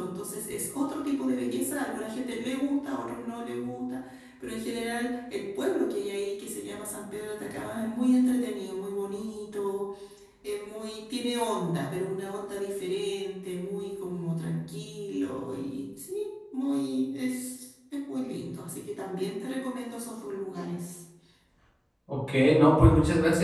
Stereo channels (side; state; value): both; identical; correlation 1.00